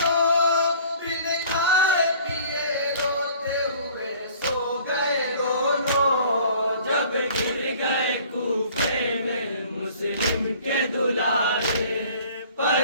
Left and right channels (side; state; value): both; inverted; correlation -0.51